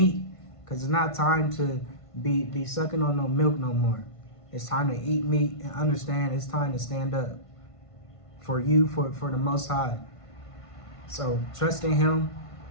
because it's not time to be sucking on no milk no more. It's time to eat meat and understand it's time to stand up for you, for the Most High. So trust in him,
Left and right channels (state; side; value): late; right; 1.5 ms